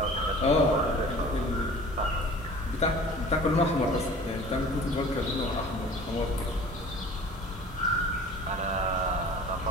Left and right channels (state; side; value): normal; both; correlation 0.44